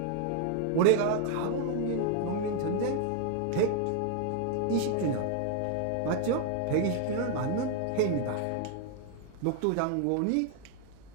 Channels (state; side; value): different; both; correlation 0.00